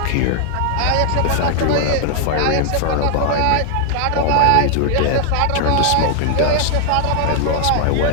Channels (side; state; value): both; different; correlation 0.00